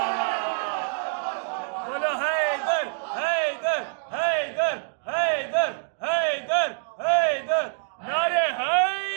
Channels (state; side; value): silent; left; digital silence